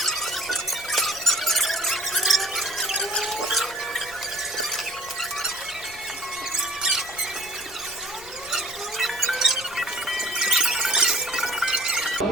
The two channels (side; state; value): left; noise; rumble, 22 dB below the sound